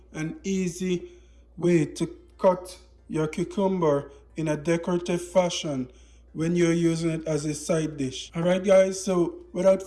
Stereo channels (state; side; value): identical; both; correlation 1.00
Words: and easy way to cut your cucumber in a decorative fashion when you're using it as a side dish. Alright guys, so without